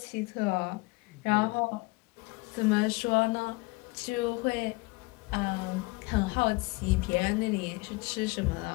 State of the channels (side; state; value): right; quieter; 25.1 dB